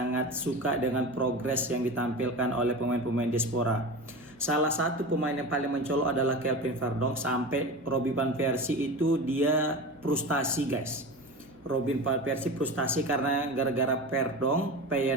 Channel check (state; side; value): normal; both; correlation 0.29